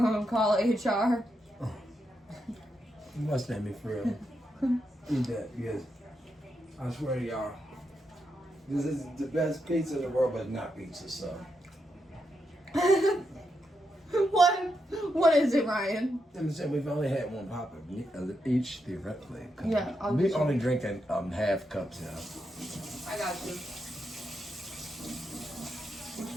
call HR? You must make me for real. Eat that, because I swear to y'all, This is the best pizza in the world, but not pizza, so. What is it, Ryan? I'm saying we've only had one pop each theoretically. Yeah, I'll we get only you. drinking half cups now. I got you. Which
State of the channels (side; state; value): both; normal; correlation 0.83